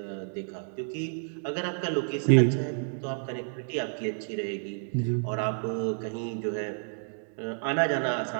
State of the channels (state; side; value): silent; left; 58 dB below the other